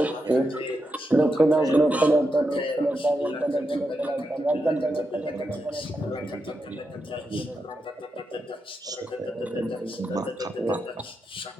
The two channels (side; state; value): both; normal; correlation 0.85